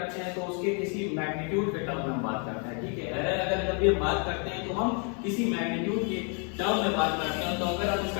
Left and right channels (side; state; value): right; quieter; 38.3 dB